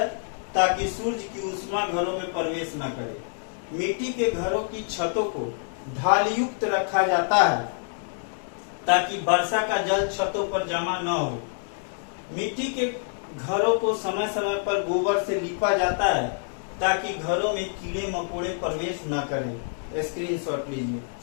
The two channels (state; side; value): silent; right; 61 dB below the other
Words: ताकि सूर्य की ऊष्मा घरों में प्रवेश न करे। मिट्टी के घरों की छतों को ढाल युक्त रखा जाता है ताकि वर्षा का जल छतों पर जमा न हो। मिट्टी के घरों को समय समय पर गोबर से लीपा जाता है ताकि घरों में कीड़े मकोड़े प्रवेश न करें। स्क्रीनशॉट लीजिए।